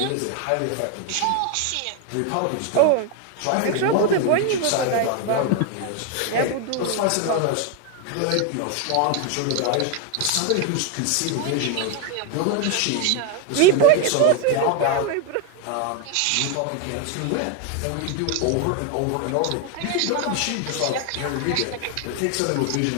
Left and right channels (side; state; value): both; different; correlation 0.01